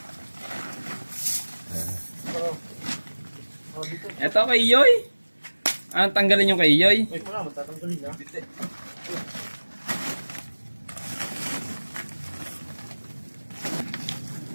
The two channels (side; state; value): both; inverted; correlation -1.00